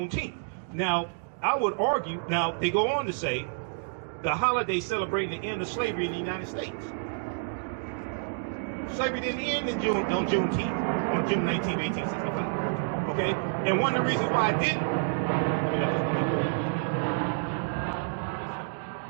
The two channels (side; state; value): left; silent; digital silence